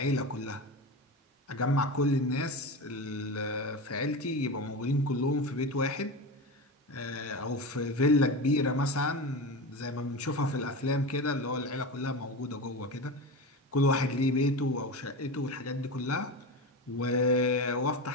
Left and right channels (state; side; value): normal; both; correlation 0.24